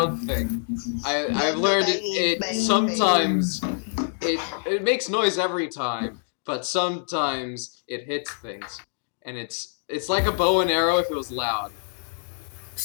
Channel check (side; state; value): right; silent; digital silence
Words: thing. I've learned it sometimes it makes noise every time, but sometimes it hits things. And it's like a bow and arrow if it was loud.